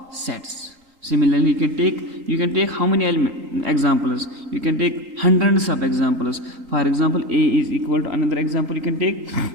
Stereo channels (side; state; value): left; late; 3.8 ms